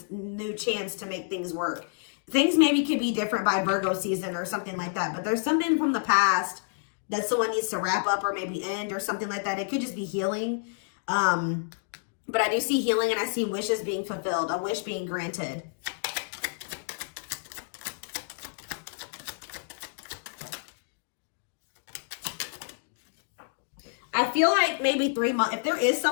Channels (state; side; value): silent; right; digital silence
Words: new chance to make things work. Things maybe could be different by Virgo season or something like that. But there's something from the past that someone needs to wrap up or maybe end or something like that. It could just be healing. But I do see healing and I see wishes being fulfilled, a wish being granted. I feel like maybe 3 months, if there is